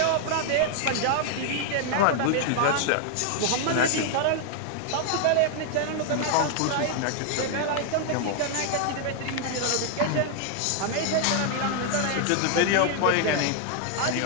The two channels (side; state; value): both; different; correlation 0.00